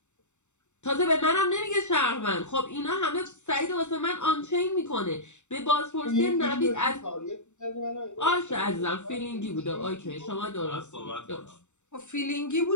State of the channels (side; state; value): right; late; 0.84 ms